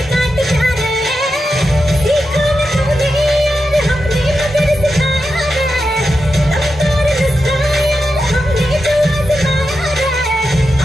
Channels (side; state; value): both; normal; correlation 0.89